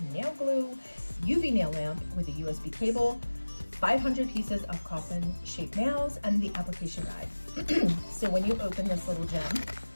nail glue, UV nail lamp with a USB cable, 500 pieces of coffin shaped nails, and the application guide. So when you open this little gem, it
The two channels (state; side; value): inverted; both; correlation -1.00